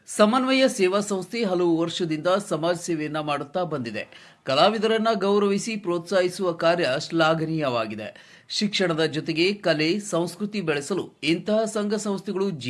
ಸಮನ್ವಯ ಸೇವಾ ಸಂಸ್ಥೆ ಹಲವು ವರ್ಷದಿಂದ ಸಮಾಜ ಸೇವೆಯನ್ನ ಮಾಡುತ್ತಾ ಬಂದಿದೆ. ಕಲಾವಿದರನ್ನ ಗೌರವಿಸಿ ಪ್ರೋತ್ಸಾಹಿಸುವ ಕಾರ್ಯ ಶ್ಲಾಘನೀಯವಾಗಿದೆ. ಶಿಕ್ಷಣದ ಜೊತೆಗೆ ಕಲೆ ಸಂಸ್ಕೃತಿ ಬೆಳೆಸಲು ಇಂತಹ ಸಂಘ ಸಂಸ್ಥೆಗಳು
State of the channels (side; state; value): both; identical; correlation 1.00